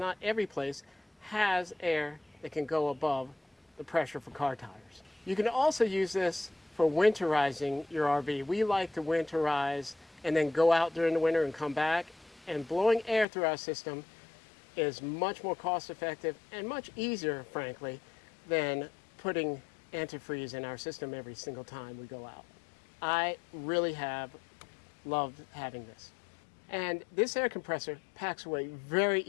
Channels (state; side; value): drops out; right; at 13.2 s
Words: every place has air that can go above the pressure for car tires. You can also use this for winterizing your RV. We like to winterize and then go out during the winter and come back, and blowing air through our system is much more cost effective and much easier, frankly, than putting antifreeze in our system every single time we go out. I really have loved having this. And this air compressor packs away very